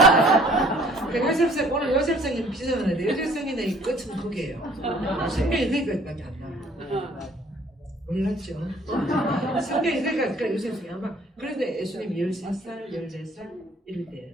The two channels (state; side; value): normal; both; correlation 0.56